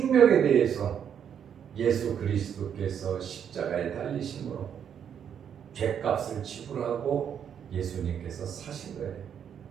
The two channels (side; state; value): left; quieter; 8.4 dB